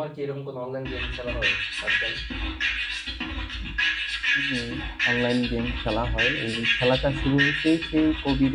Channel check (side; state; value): both; identical; correlation 1.00